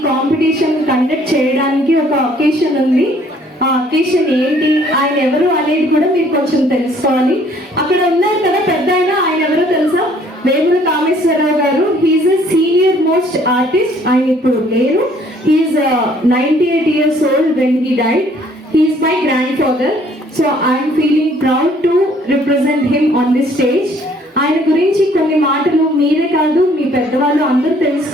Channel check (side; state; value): both; normal; correlation 0.60